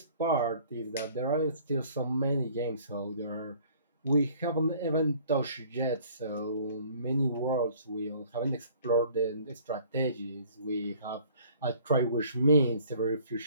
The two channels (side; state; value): both; inverted; correlation -0.54